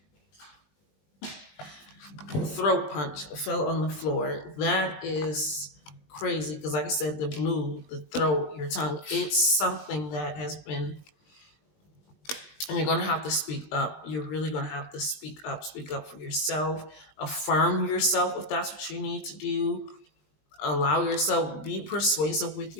Throat punch fell on the floor. That is crazy because, like I said, the blue, the throat, your tongue, it's something that has been And you're going to have to speak up. You're really going to have to speak up for yourself, affirm yourself if that's what you need to do. Allow yourself, be persuasive with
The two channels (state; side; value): late; right; 20 ms